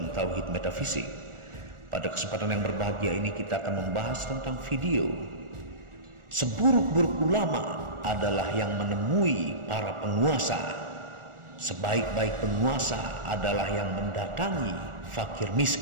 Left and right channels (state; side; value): late; left; 1.4 ms